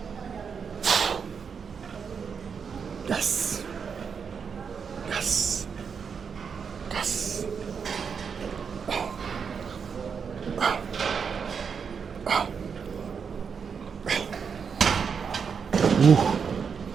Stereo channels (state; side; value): quieter; left; 6.3 dB